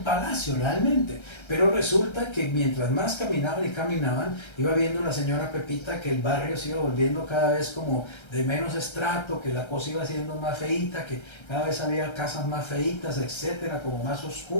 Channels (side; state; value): right; late; 1.3 ms